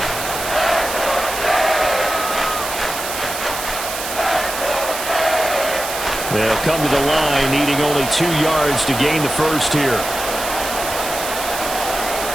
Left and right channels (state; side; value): noise; right; hiss, 6 dB below the sound